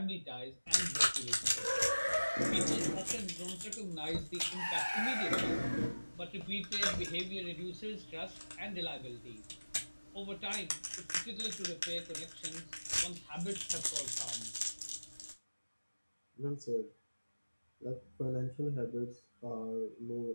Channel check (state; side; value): inverted; both; correlation -1.00